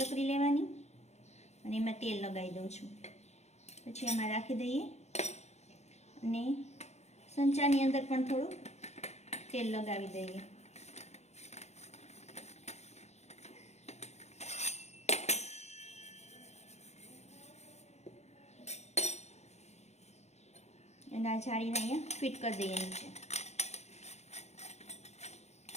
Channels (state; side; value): late; right; 0.32 ms